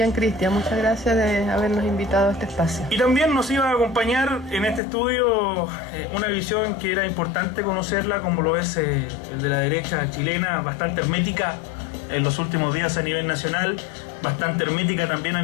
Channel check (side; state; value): right; drops out; at 4.8 s